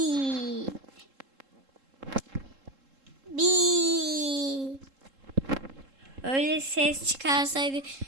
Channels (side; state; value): left; late; 3.7 ms